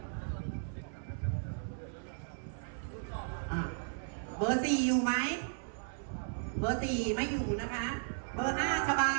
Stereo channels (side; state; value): left; silent; digital silence